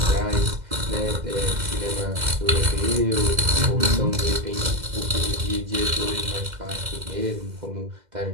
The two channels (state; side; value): late; left; 2.1 ms